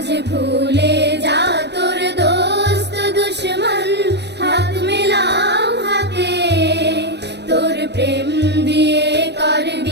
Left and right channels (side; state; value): left; late; 0.50 ms